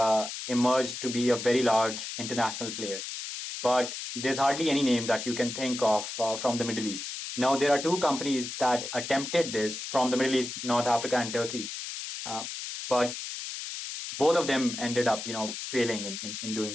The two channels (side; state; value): left; noise; hiss, 7 dB below the sound